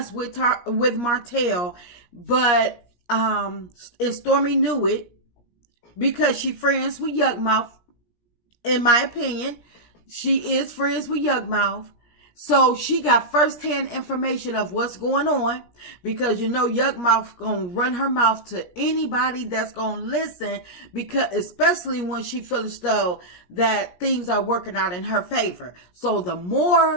with Martell, but and Stormi knew it because she friends with Yuckmouth. In my opinion, she is friends with Yuckmouth. So she got firsthand information of what's going on because Yuckmouth gonna run her mouth to anybody that's gonna listen, because especially when she feels though that things are working out in her favor. So the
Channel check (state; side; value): late; right; 17 ms